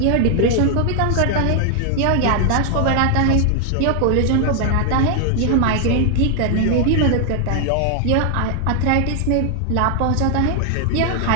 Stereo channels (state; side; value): different; both; correlation 0.00